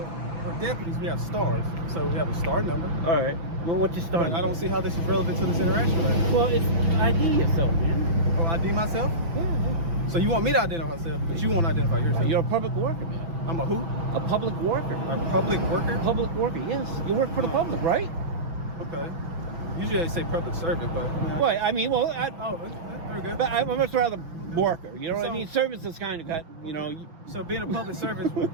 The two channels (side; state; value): left; late; 6.0 ms